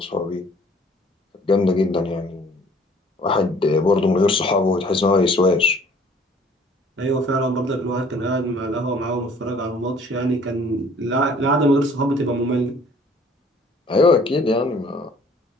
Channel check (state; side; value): normal; both; correlation 0.55